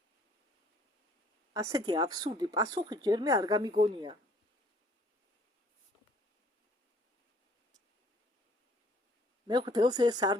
ასეთი აბსურდი პასუხი ჯერმე არ გამიგონია. მე ხდელს ეს არ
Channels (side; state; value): both; normal; correlation 0.58